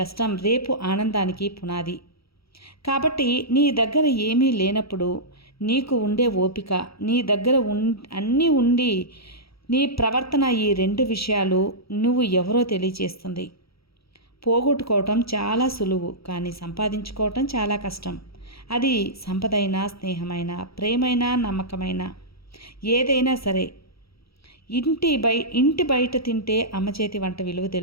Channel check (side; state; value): right; late; 0.76 ms